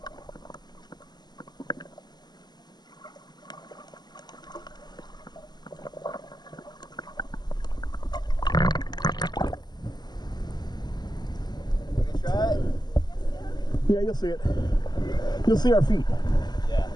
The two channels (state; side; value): late; right; 0.20 ms